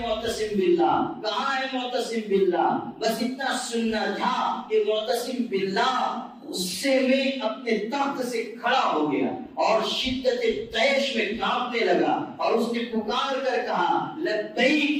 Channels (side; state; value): both; identical; correlation 1.00